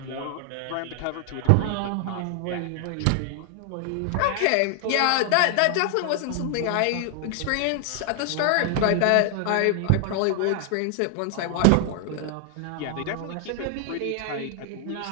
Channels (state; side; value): different; both; correlation 0.00